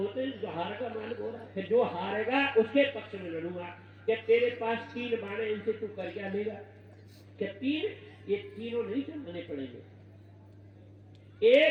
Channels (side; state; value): both; identical; correlation 1.00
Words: हैं, जो हारेगा मालिक हो रहा है। जो हारेगा उसके पक्ष में लड़ूंगा। क्या तेरे पास 3 बाण, इनसे तू कर क्या लेगा? क्या 3? ये तीनों नहीं चलने पड़ेंगे।